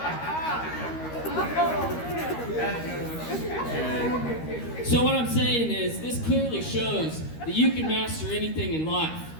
So what I'm saying is, this clearly shows that you can master anything in life.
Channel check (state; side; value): late; right; 13 ms